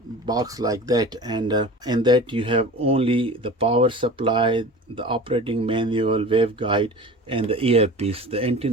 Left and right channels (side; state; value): both; normal; correlation 0.36